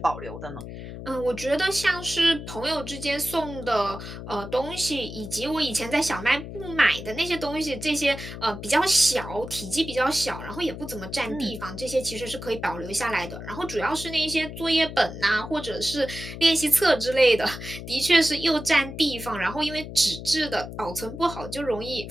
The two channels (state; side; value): noise; left; hum, 10 dB below the sound